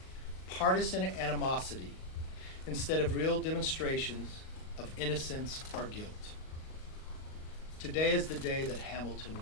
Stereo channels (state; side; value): late; right; 38 ms